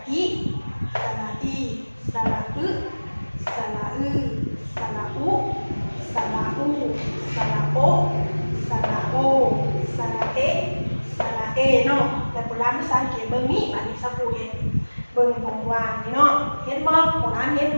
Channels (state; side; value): inverted; both; correlation -1.00